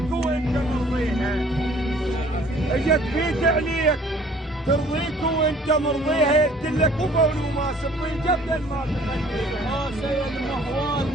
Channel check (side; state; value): both; normal; correlation 0.54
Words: وانت مرضيها. اجت فيك عليك ترضيك وانت مرضيها. قلت لك وقول وما سبي جبل ما تخليها. سيد مهوال